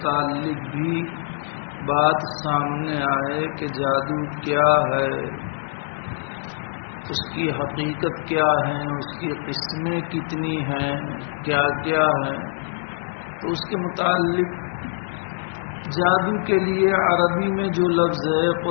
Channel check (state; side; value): silent; right; 62 dB below the other